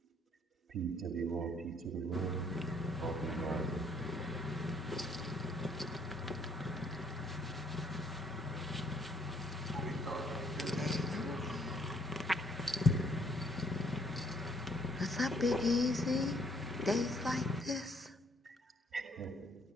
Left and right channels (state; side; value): normal; both; correlation 0.66